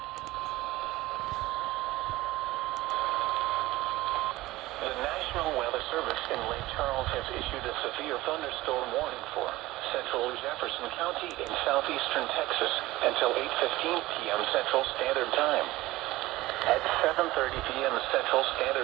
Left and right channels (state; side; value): quieter; left; 18.1 dB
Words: The National Weather Service in Lake Charles has issued a severe thunderstorm warning for central Jefferson County in southeastern Texas until 8:15 p.m. Central Standard Time. At 7:30 p.m. Central